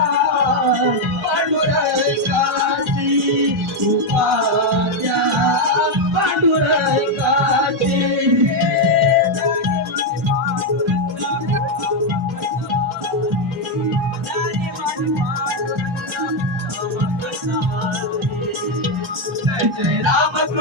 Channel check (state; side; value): normal; both; correlation 0.03